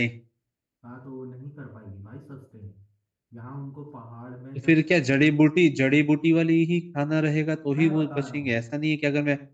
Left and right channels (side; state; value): both; identical; correlation 1.00